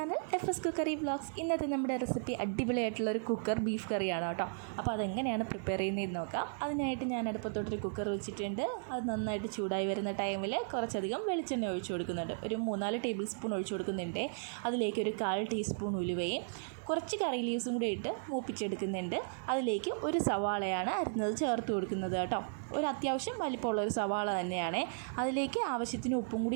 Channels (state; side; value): silent; left; 54 dB below the other